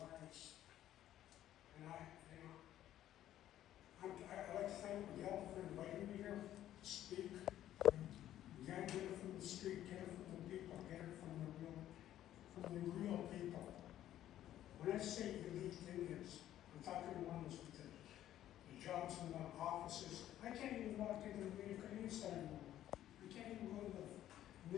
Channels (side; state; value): right; quieter; 12.4 dB